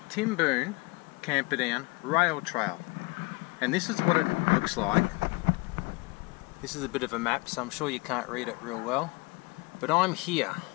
Timboon Camperdown Rail Trail. And this is what it looks like. This is a bit of a map, so I'm sure you can't read it real well. But I'm here,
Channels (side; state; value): right; quieter; 25.6 dB